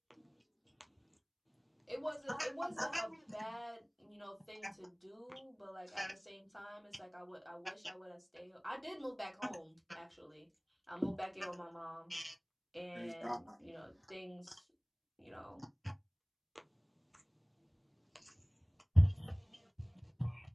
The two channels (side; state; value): both; identical; correlation 1.00